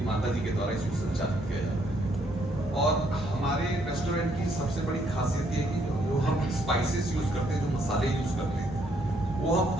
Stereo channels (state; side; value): normal; both; correlation 0.70